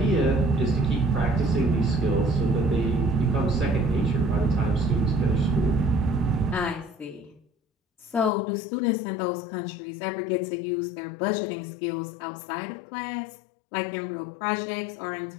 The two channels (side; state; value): right; drops out; at 8.3 s